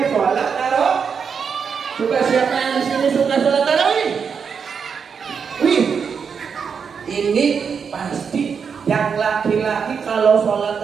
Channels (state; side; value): quieter; left; 6.3 dB